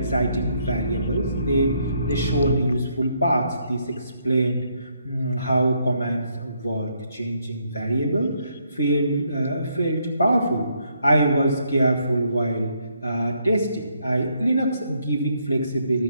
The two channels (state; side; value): inverted; both; correlation -0.73